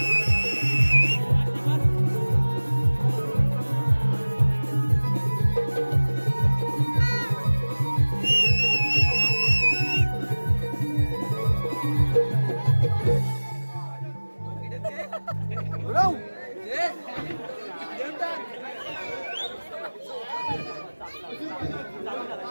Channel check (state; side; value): inverted; both; correlation -1.00